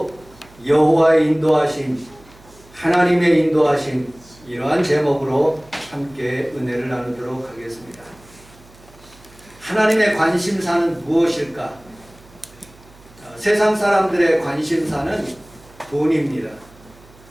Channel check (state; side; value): noise; right; hum, 25 dB below the sound